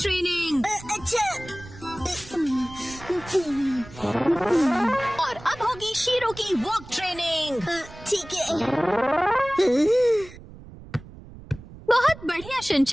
अच्छा। और अब होगी शीरो की वॉक ट्रेनिंग। ठीक है। बहुत बढ़िया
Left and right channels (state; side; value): noise; right; rumble, 17 dB below the sound